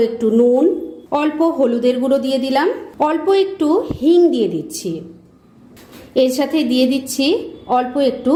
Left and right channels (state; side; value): identical; both; correlation 1.00